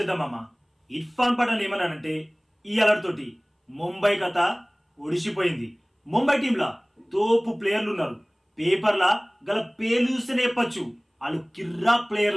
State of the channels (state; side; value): identical; both; correlation 1.00